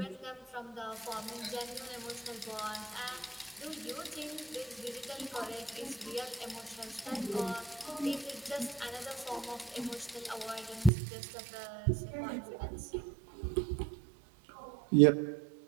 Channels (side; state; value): left; drops out; at 10.9 s